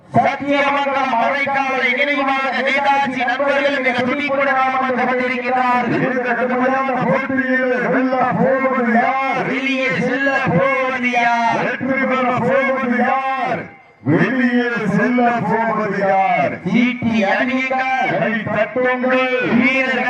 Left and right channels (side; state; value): both; identical; correlation 1.00